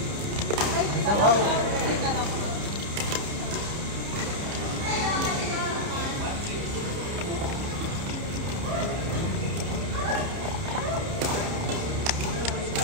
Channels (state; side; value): late; left; 30 ms